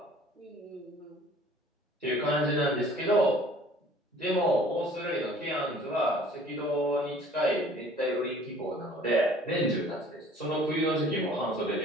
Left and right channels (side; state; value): both; normal; correlation 0.52